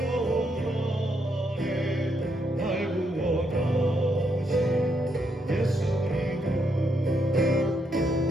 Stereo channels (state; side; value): normal; both; correlation 0.77